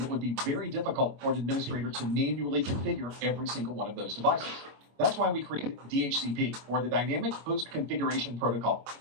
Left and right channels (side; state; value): left; late; 25 ms